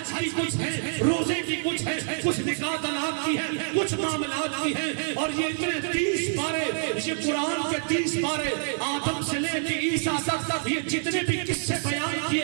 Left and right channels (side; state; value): left; silent; digital silence